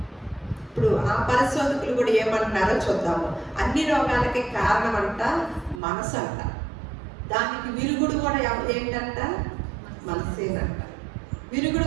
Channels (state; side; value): drops out; left; at 5.8 s